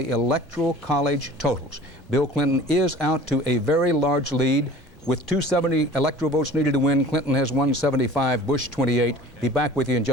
Electoral College totals. Bill Clinton is out to a very large lead. With 270 electoral votes needed to win, Clinton has 175, Bush 28. Be back with you in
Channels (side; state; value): both; normal; correlation 0.44